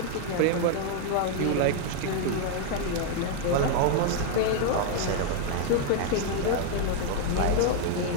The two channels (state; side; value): different; both; correlation 0.01